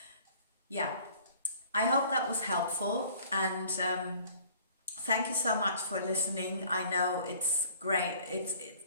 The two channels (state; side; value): inverted; both; correlation -0.53